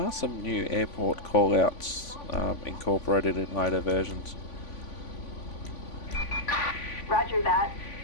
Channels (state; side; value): late; right; 3.5 ms